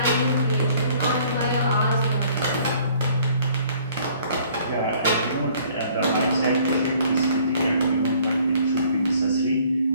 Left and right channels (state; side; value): inverted; both; correlation -0.58